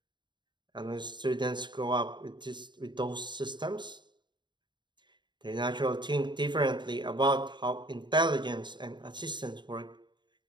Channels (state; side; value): late; left; 0.22 ms